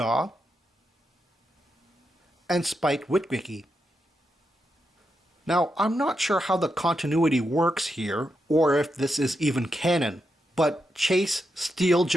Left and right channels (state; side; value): normal; both; correlation 0.85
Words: and Spike Witwicky. Now, I'm not sure how the continuity works here, or if this is even canon, but Chase,